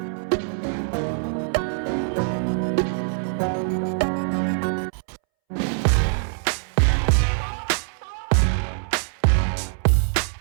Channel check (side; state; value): left; silent; 63 dB below the other